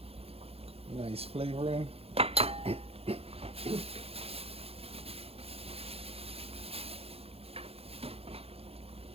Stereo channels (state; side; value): late; left; 0.29 ms